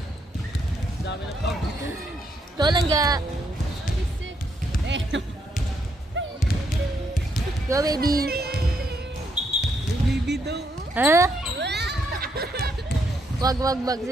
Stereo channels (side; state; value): both; normal; correlation 0.76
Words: Ito lang ga. Go, baby. Baby daw. Ha? Wag.